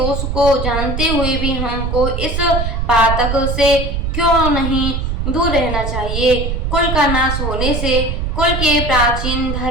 को जानते हुए भी हमको इस पातक से क्यों नहीं दूर रहना चाहिए। कुल का नाश होने से कुल के प्राचीन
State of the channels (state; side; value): noise; right; rumble, 2 dB below the sound